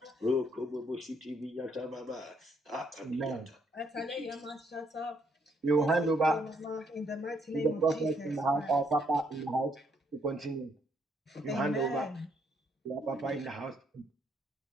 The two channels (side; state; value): both; normal; correlation 0.71